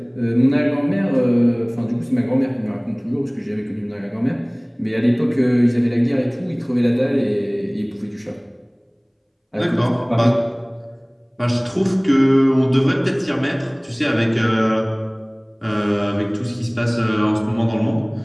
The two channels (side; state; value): both; identical; correlation 1.00